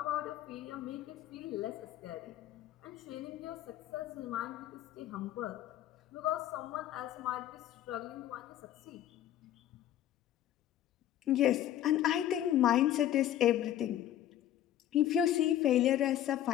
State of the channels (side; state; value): right; quieter; 11.9 dB